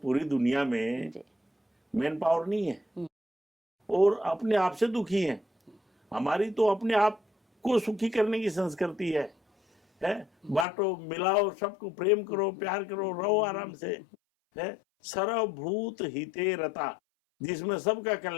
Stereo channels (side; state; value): right; drops out; at 10.7 s